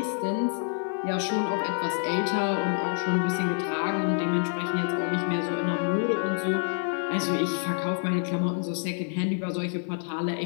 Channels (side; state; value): right; silent; 57 dB below the other